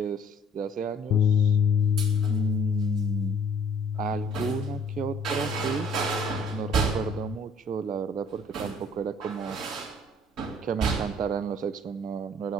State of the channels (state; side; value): normal; both; correlation 0.57